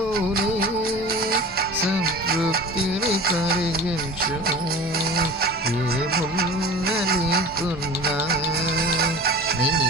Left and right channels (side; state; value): left; noise; hum, 24 dB below the sound